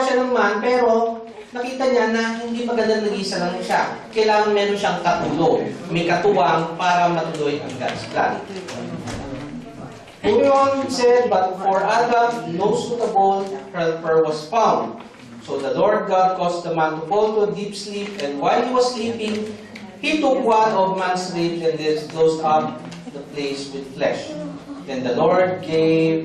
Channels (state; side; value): identical; both; correlation 1.00